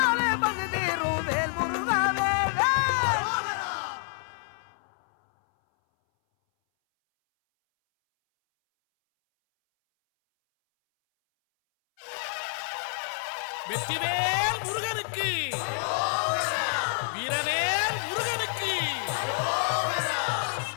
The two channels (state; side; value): silent; right; 59 dB below the other